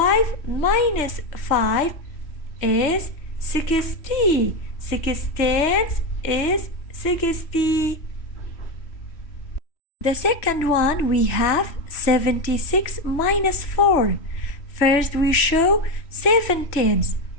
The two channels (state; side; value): late; right; 3.1 ms